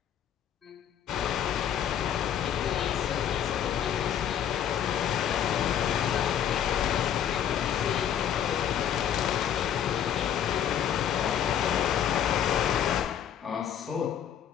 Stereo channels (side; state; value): right; quieter; 9.5 dB